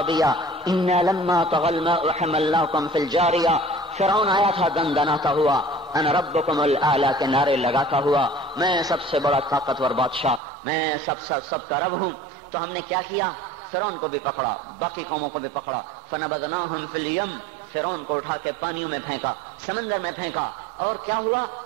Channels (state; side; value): drops out; left; at 10.4 s